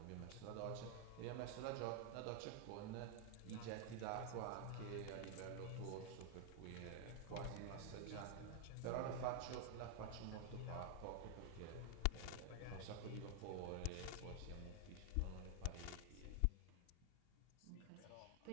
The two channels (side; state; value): both; different; correlation 0.00